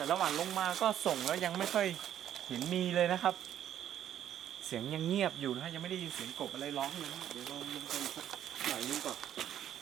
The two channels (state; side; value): quieter; left; 10.7 dB